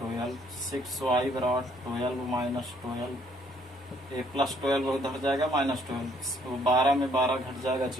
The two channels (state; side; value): normal; both; correlation 0.65